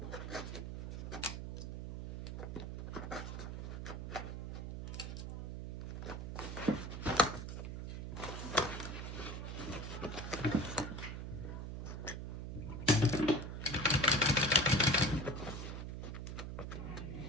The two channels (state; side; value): noise; right; hum, 5 dB below the sound